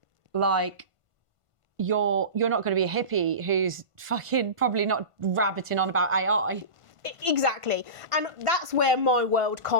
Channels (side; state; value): left; late; 1.5 ms